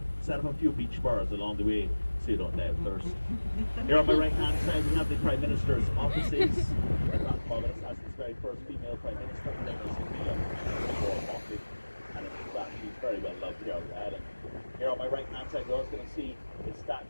few beach bars along the way so you don't die of thirst. Here on my right hand side we have the Prime Minister's offices. Barbados has its very first female Prime Minister, her name is Sophia, and in fact she's very well loved here on the island. Here on my right hand side we're also going to see the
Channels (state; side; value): inverted; both; correlation -1.00